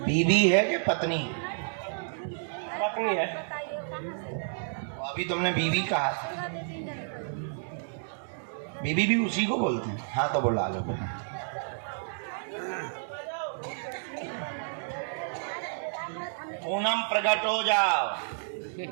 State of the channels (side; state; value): left; silent; digital silence